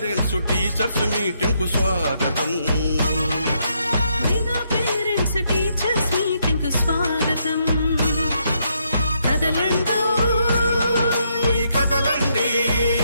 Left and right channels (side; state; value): both; inverted; correlation -0.76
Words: టీచర్స్ మీటింగ్ కు స్వాగతం. మెగా పేరెంట్స్ టీచర్స్ మీటింగ్ కు స్వాగతం. కదలండి కదలండి,